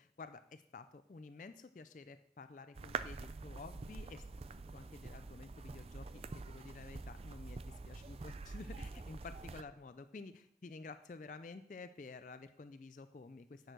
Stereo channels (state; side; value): normal; both; correlation 0.45